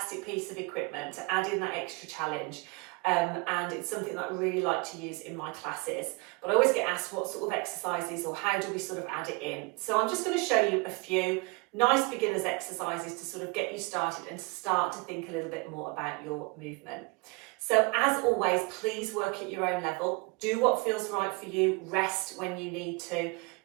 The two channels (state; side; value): quieter; left; 27.7 dB